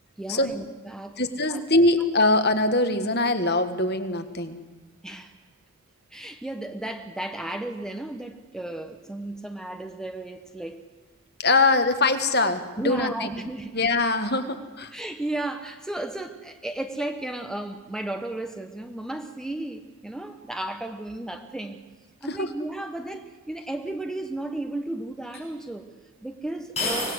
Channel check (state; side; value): normal; both; correlation 0.02